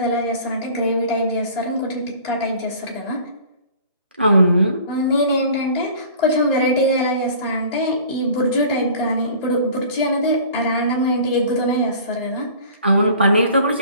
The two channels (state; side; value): inverted; both; correlation -0.46